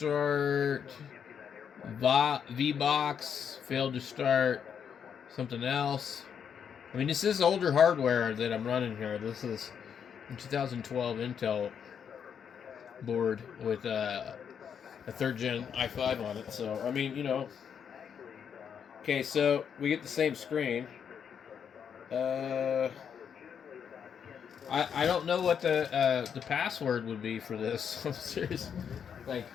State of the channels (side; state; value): right; quieter; 7.6 dB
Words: VBox, failed to start something else. I mean, this is older hardware that I'm running here. This is a 2012 Intel board with a third gen i5 on it. So, I mean, Okay, so we get the same screen. I don't know what the password would be for this. I'm serious. Like,